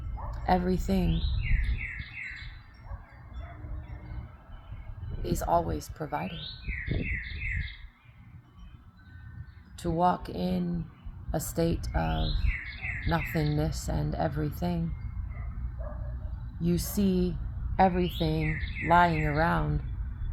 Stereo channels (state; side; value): identical; both; correlation 1.00